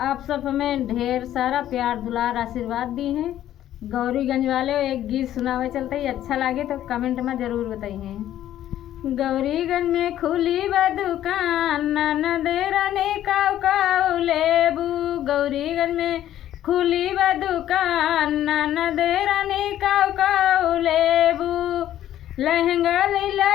सब हमें ढेर सारा प्यार दुलार आशीर्वाद दी हैं। गौरीगंज वाले एक गीत सुनावे चलते ही, अच्छा लगे तो कमेंट में ज़रूर बताइए। गौरीगंज में खुली बा दुकान, ननदे रानी काऊ काऊ लेबू। गौरीगंज में खुली बा दुकान, ननदे रानी काऊ काऊ लेबू। लहंगा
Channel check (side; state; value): right; quieter; 12.1 dB